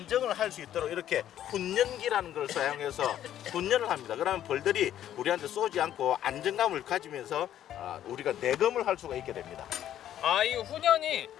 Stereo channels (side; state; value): right; quieter; 11.3 dB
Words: 할 수 있도록 이렇게 훈련기라는 걸 사용해서 훈련을 합니다. 그러면 벌들이 우리한테 쏘지 않고 안정감을 가지면서 우리가 내금을 할 수가 있게 됩니다. 이 훈련이